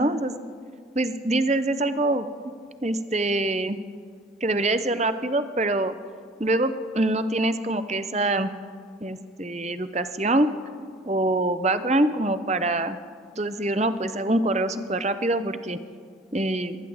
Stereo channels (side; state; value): both; normal; correlation 0.49